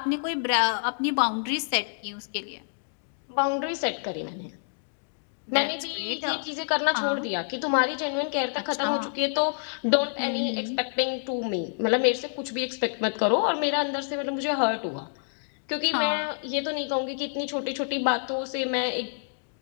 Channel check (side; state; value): right; silent; digital silence